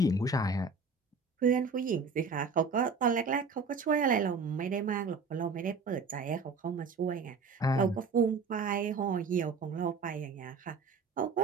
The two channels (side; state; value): left; quieter; 4.6 dB